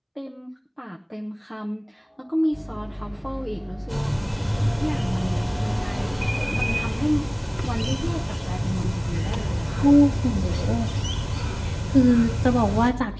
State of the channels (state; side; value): identical; both; correlation 1.00